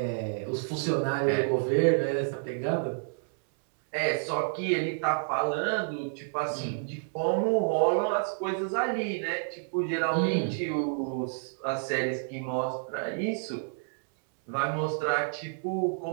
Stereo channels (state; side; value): silent; left; 58 dB below the other